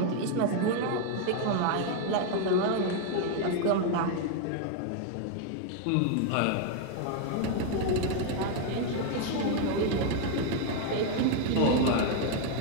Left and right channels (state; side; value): different; both; correlation 0.00